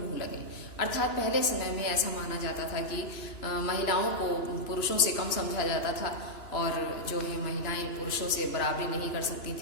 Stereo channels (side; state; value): right; late; 2.9 ms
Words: लगे। अर्थात पहले समय में ऐसा माना जाता था कि महिलाओं को पुरुषों से कम समझा जाता था और जो है महिलाएं पुरुषों से बराबरी नहीं कर सकती